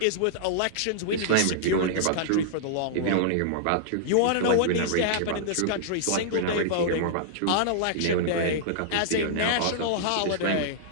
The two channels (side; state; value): both; different; correlation -0.02